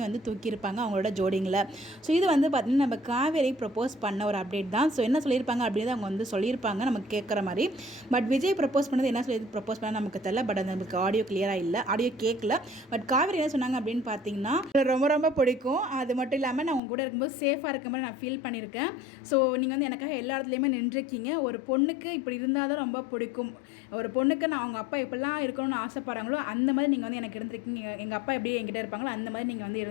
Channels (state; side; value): drops out; right; at 16.8 s